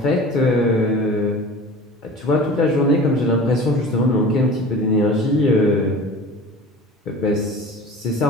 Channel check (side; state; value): both; normal; correlation 0.39